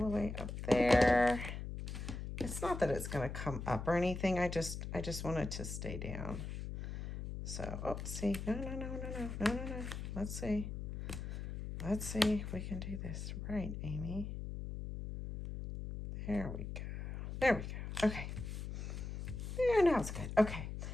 way up there. It's not that it's going to come up or anything. I just want it to stay down. So, oh, see. No. Let's see if we can do this right, Amy. There we go. Okay. There, now it's good. Okay.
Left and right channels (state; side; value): noise; left; hum, 6 dB below the sound